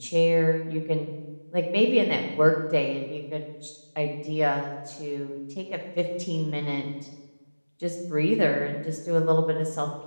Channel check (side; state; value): both; inverted; correlation -1.00